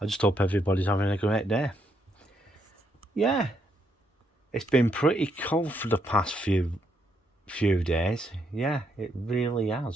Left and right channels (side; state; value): both; normal; correlation 0.76